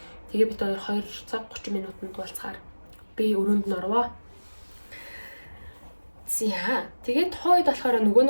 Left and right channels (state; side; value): inverted; both; correlation -1.00